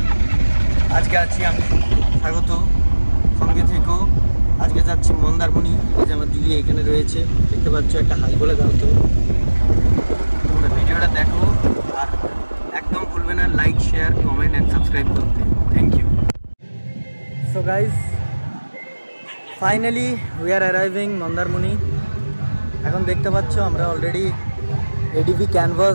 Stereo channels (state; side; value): inverted; both; correlation -1.00